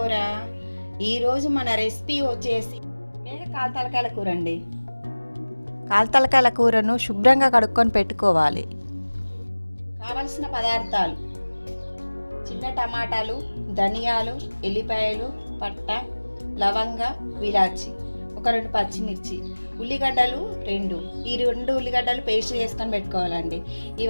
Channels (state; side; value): inverted; both; correlation -1.00